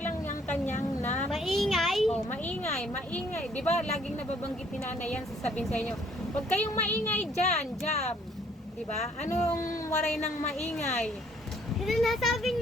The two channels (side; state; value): both; normal; correlation 0.62